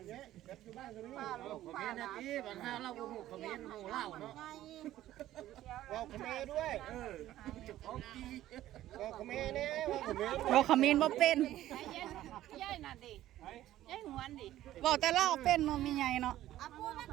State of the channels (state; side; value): quieter; left; 13.8 dB